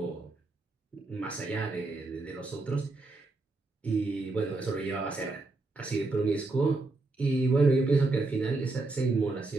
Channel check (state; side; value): quieter; left; 3.3 dB